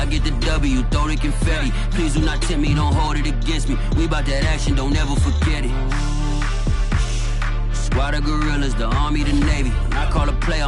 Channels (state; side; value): identical; both; correlation 1.00